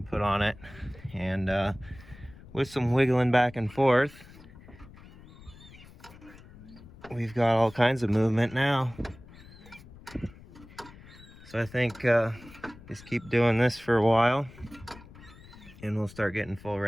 put on it, and with some wiggling back and forth, we've got all kinds of movement now. So I think just keep doing this for a while and we'll start getting full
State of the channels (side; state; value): left; noise; rumble, 20 dB below the sound